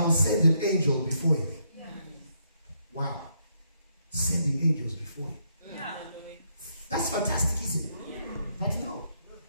send an angel before you. Yeah. Wow. Sending angels before you. Yeah. That's fantastic, isn't it? Yeah. But no,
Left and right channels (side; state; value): both; inverted; correlation -0.76